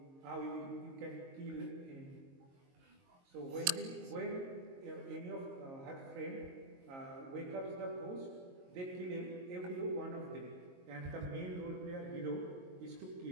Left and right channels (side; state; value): left; late; 22 ms